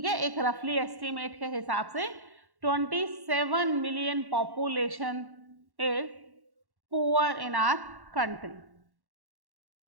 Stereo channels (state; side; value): late; left; 1.1 ms